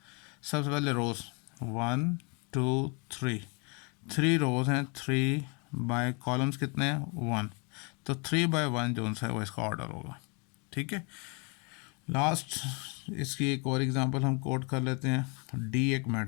सबसे पहले रोज 1 2 3, 3 रोज हैं, 3 बाय कॉलम्स कितने हैं 1, तो 3 बाय 1 जो है वो इसका ऑर्डर होगा। ठीक है। लास्ट इसकी एक और एग्जांपल हम कोड कर लेते हैं। डी एक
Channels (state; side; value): quieter; right; 33.4 dB